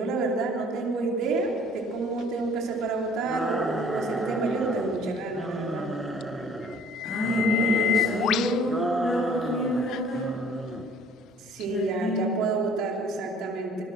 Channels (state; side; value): normal; both; correlation 0.53